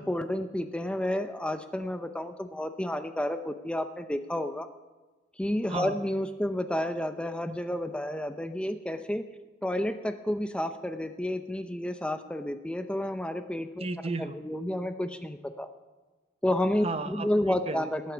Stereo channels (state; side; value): normal; both; correlation 0.87